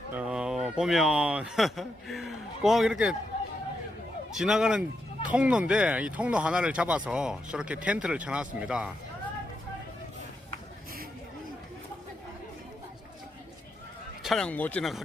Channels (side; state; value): both; normal; correlation 0.83